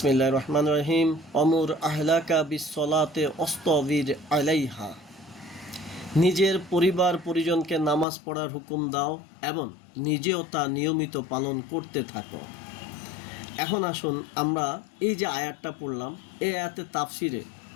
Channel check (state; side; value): drops out; right; at 8.1 s